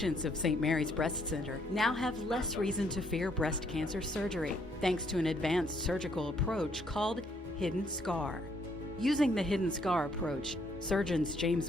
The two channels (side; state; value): both; normal; correlation 0.69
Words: of St. Mary's Breast Center now have less reason to fear breast cancer surgery, thanks to an advanced surgical approach called hidden scar. Using the hidden scar approach, surgeons